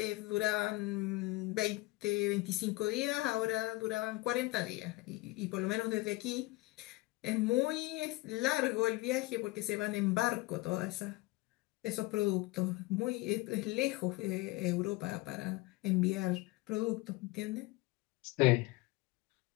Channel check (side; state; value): right; quieter; 21.3 dB